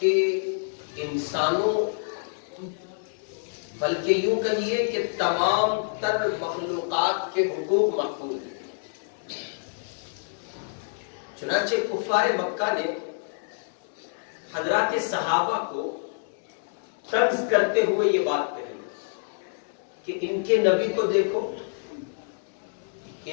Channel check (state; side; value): silent; right; 59 dB below the other